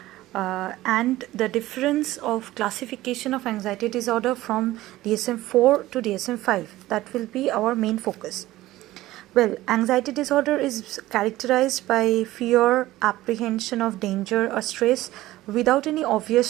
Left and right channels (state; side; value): quieter; left; 16.4 dB